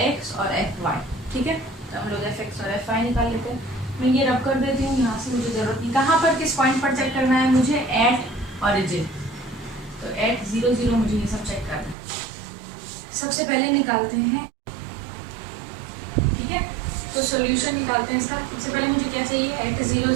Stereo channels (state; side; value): drops out; left; at 12.0 s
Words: एक्स और एफ वाई। ठीक है, तो हम लोग एफ एक्स और एफ वाई निकाल लेते हैं। मैं ये रब कर देती हूँ, यहाँ से मुझे ज़रूरत नहीं, कहाँ पर किस पॉइंट पर चेक करना है मुझे, एट ऑरिजिन, तो एट 0 0 मुझे ये सब चेक करना है। सबसे पहले निकालते हैं, ठीक है, तो सॉल्यूशन निकालते हैं इसका। सबसे पहले मुझे क्या चाहिए, एट 0